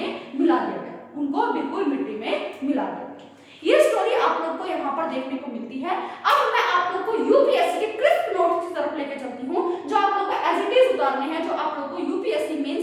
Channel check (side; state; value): both; identical; correlation 1.00